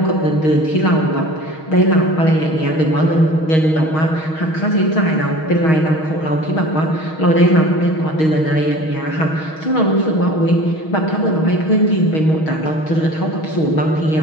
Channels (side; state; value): right; late; 6.3 ms